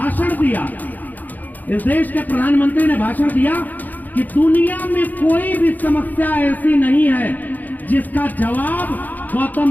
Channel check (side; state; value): right; late; 0.083 ms